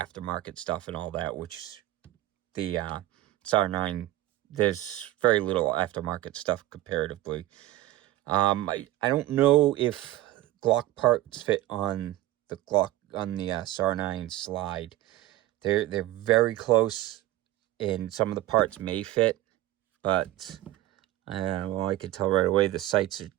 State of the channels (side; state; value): left; quieter; 15.5 dB